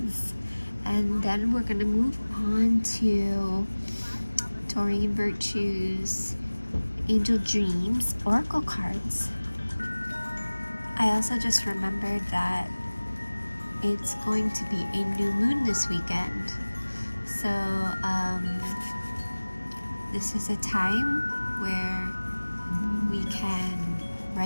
And then we're going to move on to Doreen Virtue's Angel Dreams Oracle cards. I also just remembered that it's going to be a new moon this weekend. So this is a time where we can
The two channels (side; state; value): both; inverted; correlation -1.00